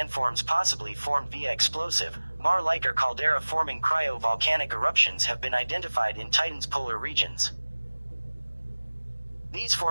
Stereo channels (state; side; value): inverted; both; correlation -1.00